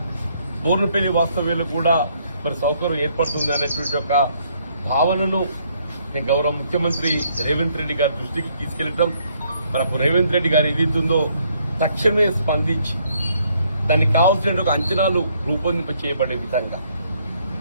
బోర్నపల్లి వాస్తవ్యులు కూడా మరి సౌకర్యం ఏర్పడుతుంది అనేటువంటి ఒక భావనను గౌరవ ముఖ్యమంత్రి రేవంత్ రెడ్డి గారి దృష్టికి తీసుకెళ్లడం మనకు రేవంత్ రెడ్డి గారు ఏదైతుందో తక్షణమే స్పందించి దానికి కావాల్సిన ఒక అంచనాలు రూపొందింప చేయబడే విధంగా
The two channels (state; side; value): inverted; both; correlation -0.69